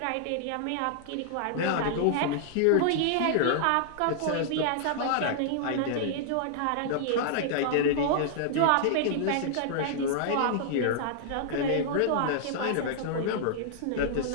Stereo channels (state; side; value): different; both; correlation -0.01